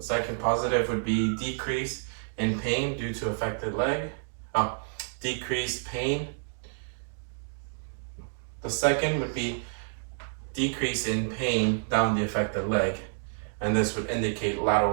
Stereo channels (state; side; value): silent; left; digital silence